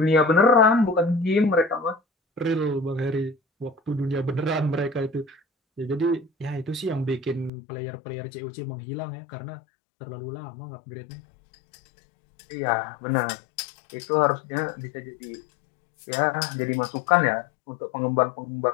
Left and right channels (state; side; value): drops out; right; at 7.5 s